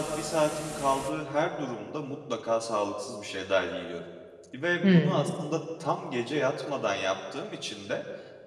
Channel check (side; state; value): both; identical; correlation 1.00